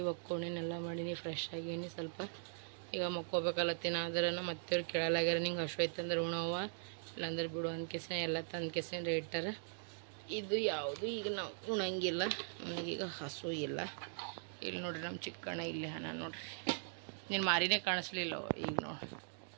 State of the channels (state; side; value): silent; left; digital silence